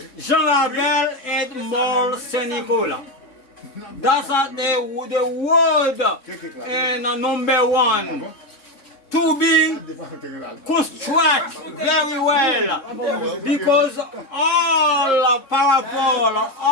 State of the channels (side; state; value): right; late; 3.7 ms